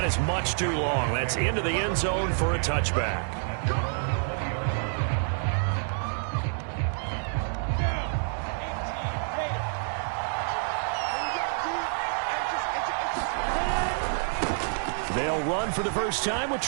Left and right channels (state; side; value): silent; left; 59 dB below the other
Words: is much too long. That's into the end zone for a touchback. They'll run for the first time with